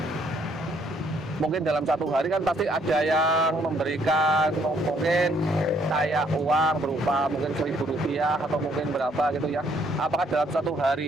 mungkin dalam satu hari kan pasti ada yang memberikan mungkin kayak uang berupa mungkin Rp1.000 atau mungkin berapa gitu ya. Apakah dalam satu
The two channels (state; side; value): normal; both; correlation 0.67